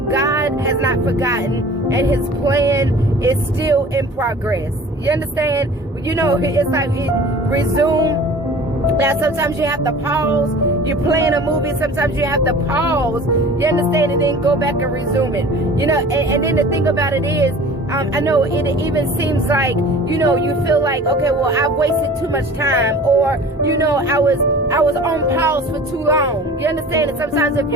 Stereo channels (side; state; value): both; normal; correlation 0.43